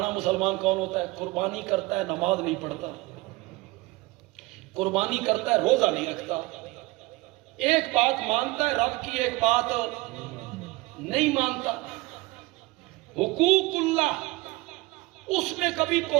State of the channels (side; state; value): left; quieter; 22.1 dB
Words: مسلمان کون ہوتا ہے؟ قربانی کرتا ہے نماز نہیں پڑھتا، قربانی کرتا ہے روزہ نہیں رکھتا، ایک بات مانتا ہے رب کی، ایک بات نہیں مانتا. حقوق اللہ اس میں کبھی